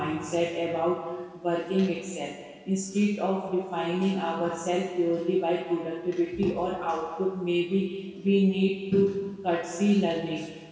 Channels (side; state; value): both; identical; correlation 1.00